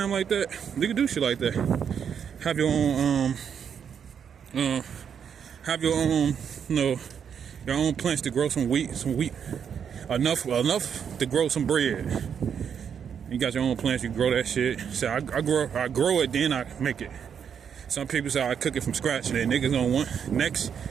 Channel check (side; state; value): left; quieter; 7.7 dB